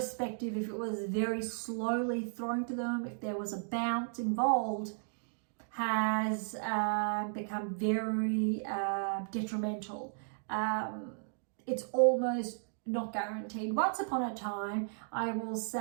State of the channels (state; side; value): silent; left; digital silence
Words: if it was very slowly thrown to them, if there was a bounce involved, has become very detrimental. It's almost not guaranteed. Once upon a time, I will